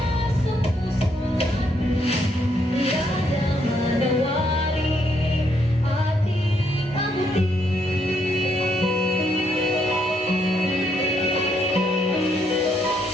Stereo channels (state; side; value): normal; both; correlation 0.74